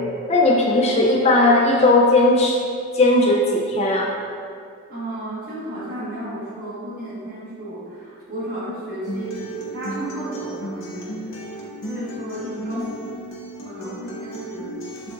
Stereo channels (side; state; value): both; normal; correlation 0.17